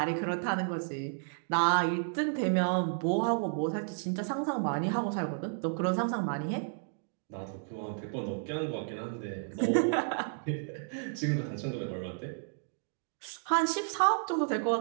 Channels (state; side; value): silent; left; digital silence